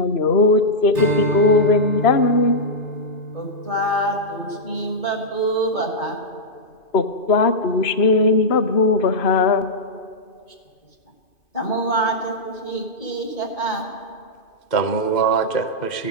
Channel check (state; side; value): late; right; 2.5 ms